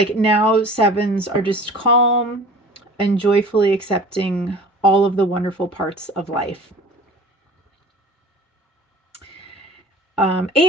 now sevens are just calm and joyfully accepting all of the wonderful parts of life.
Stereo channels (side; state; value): both; normal; correlation 0.42